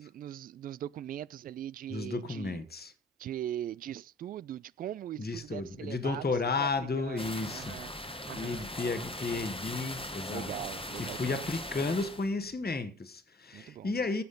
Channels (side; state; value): both; normal; correlation 0.49